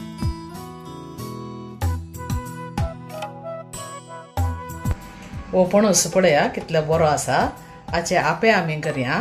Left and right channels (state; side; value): identical; both; correlation 1.00